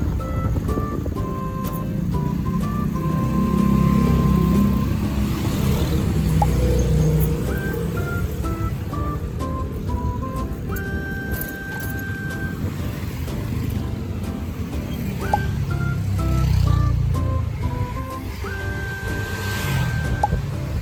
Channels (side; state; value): both; identical; correlation 1.00